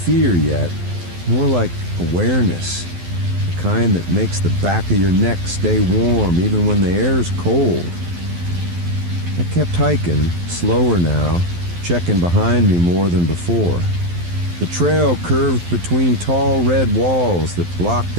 yet, more like awareness, the kind that makes the back of your neck stay warm even when the air's cold. I kept hiking, slower now, checking behind me more than before. The trail curved between tall red walls that blocked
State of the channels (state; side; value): late; left; 12 ms